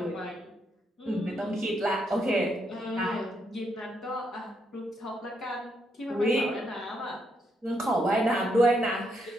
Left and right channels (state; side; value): normal; both; correlation 0.77